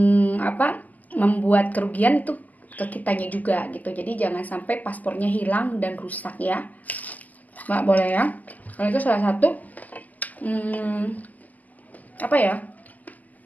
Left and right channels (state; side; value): late; right; 0.080 ms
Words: apa membuat kerugian itu ke kitanya juga gitu. Jadi jangan sampai paspornya hilang dan rusak ya, nggak boleh ya. Kalau itu salah satu apa ya,